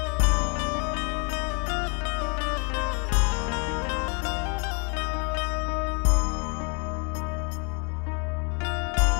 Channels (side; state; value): right; quieter; 35.3 dB